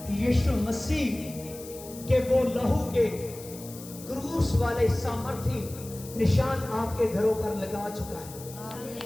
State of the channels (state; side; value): noise; left; hiss, 16 dB below the sound